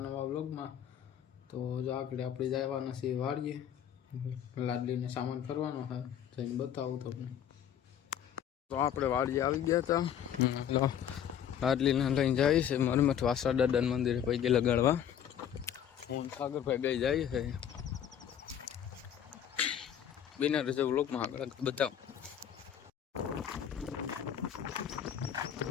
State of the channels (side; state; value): right; quieter; 9.4 dB